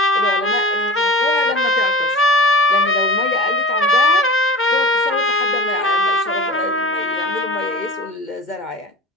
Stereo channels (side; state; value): both; normal; correlation 0.34